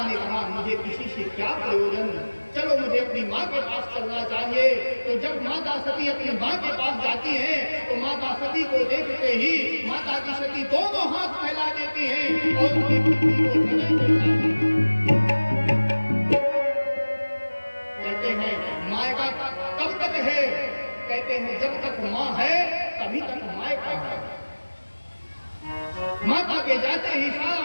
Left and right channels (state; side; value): inverted; both; correlation -1.00